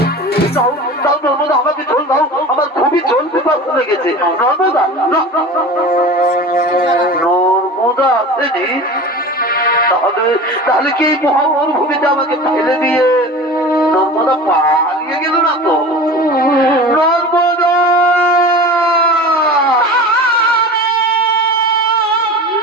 নর্মদা আমাকে জল দাও, আমার খুবই জল পিপাসা লেগেছে। নর্মদা নর্মদা আসেনি? তাহলে কি এই মহামরুভূমিতে আমাকে ফেলে দিয়ে নর্মদা পালিয়ে গেল না তো? নর্মদা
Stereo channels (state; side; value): normal; both; correlation 0.35